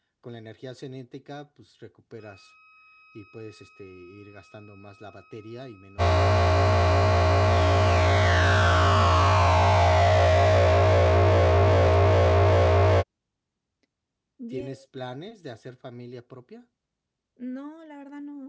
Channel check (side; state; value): both; identical; correlation 1.00